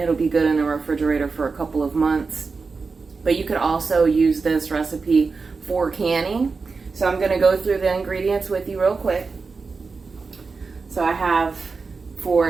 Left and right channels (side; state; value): left; quieter; 4.5 dB